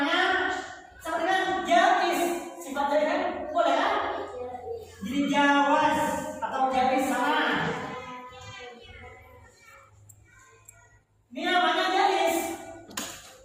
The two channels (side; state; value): both; identical; correlation 1.00